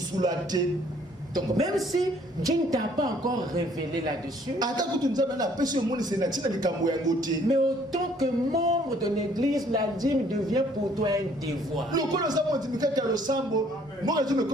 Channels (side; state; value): both; normal; correlation 0.61